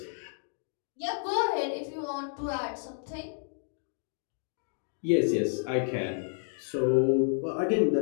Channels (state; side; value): silent; right; digital silence